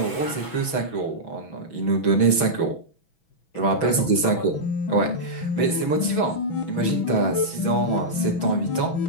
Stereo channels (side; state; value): right; late; 6.1 ms